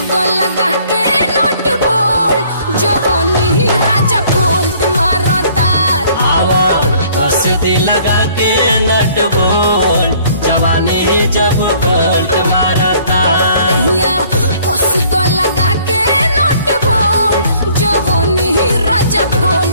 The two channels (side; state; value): both; inverted; correlation -0.58